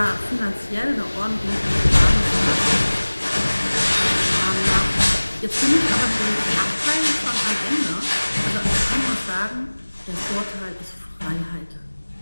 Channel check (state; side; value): inverted; both; correlation -1.00